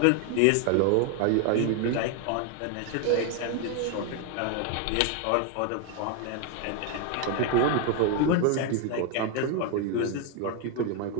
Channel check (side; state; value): both; different; correlation 0.01